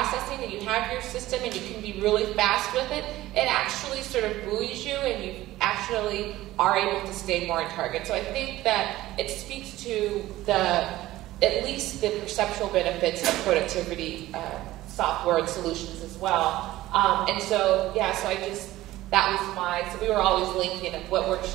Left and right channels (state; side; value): quieter; left; 16.2 dB